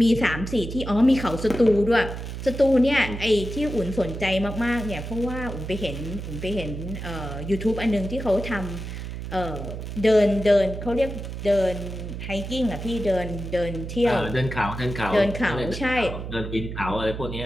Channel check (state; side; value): noise; right; hum, 7 dB below the sound